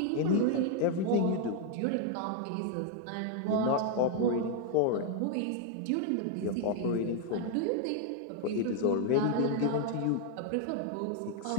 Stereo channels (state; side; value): different; both; correlation 0.00